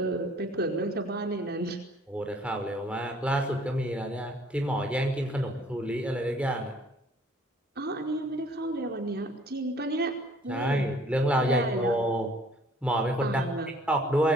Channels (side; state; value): both; normal; correlation 0.57